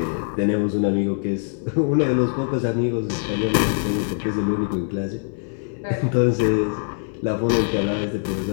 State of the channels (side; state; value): right; silent; 61 dB below the other